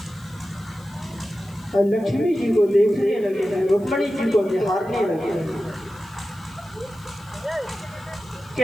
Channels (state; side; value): noise; left; hiss, 27 dB below the sound